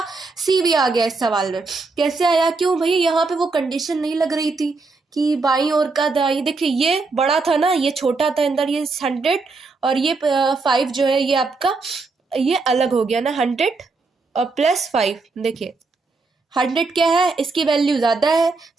सी वी आ गया इस सवाल में। कैसे आया, क्यों भैया, यहाँ पे वो कंडीशन नहीं लग रही थी कि बाईं ओर का दाईं, देखिए ये बड़ा था ना, ये छोटा था अंदर, ये 100 और ये 5 जो है ये आपका, ये अलग हो गया ना, 100 और +5, देखिए 100 क्या है, इसकी वैल्यू ज़्यादा है,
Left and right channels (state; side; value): quieter; left; 3.9 dB